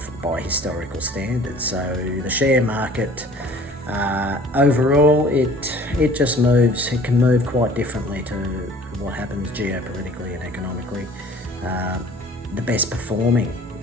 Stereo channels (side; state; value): both; normal; correlation 0.50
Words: by historical standards. So the share market, overall, it just moves. It can move quite differently to what happens geopolitically and economically. The best performing